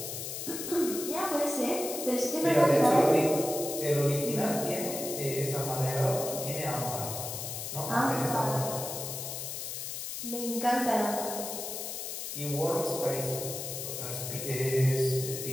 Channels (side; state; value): left; noise; hiss, 6 dB below the sound